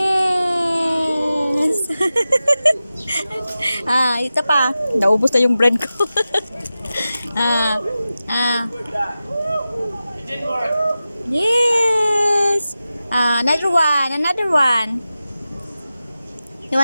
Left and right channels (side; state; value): both; inverted; correlation -0.94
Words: Ito pa. Naubos na yung bread ko. ah. Yes. Another one. Another one. You